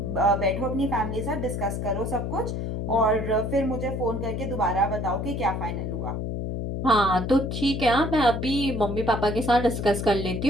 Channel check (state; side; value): noise; left; hum, 3 dB below the sound